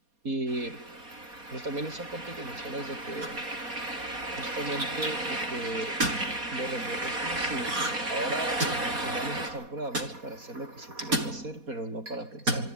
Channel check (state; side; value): late; left; 4.2 ms